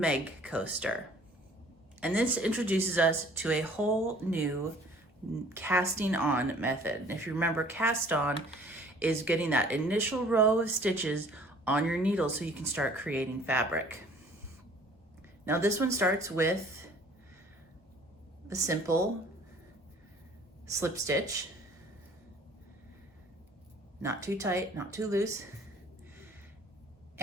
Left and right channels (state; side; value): normal; both; correlation 0.53